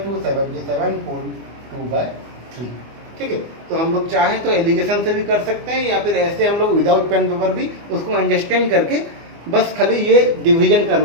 to 77 full 2/3। ठीक है, तो हम लोग चाहें तो एलिगेशन से भी कर सकते हैं, या फिर ऐसे हम लोग विदाउट पेन पेपर भी उसको अंडरस्टैंड करके बस खाली ये डिवीजन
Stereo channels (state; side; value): late; left; 24 ms